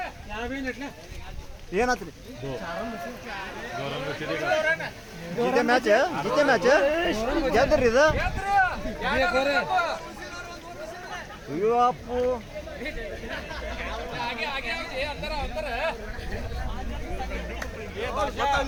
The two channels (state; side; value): identical; both; correlation 1.00